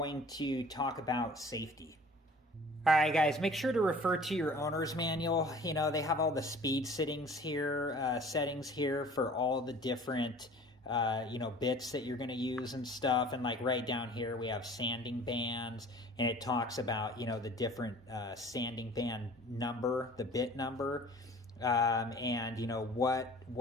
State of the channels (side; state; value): both; normal; correlation 0.47